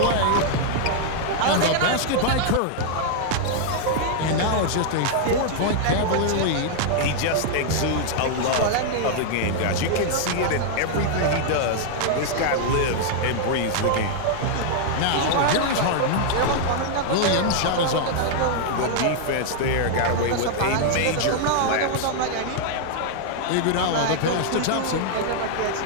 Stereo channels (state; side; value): different; both; correlation 0.00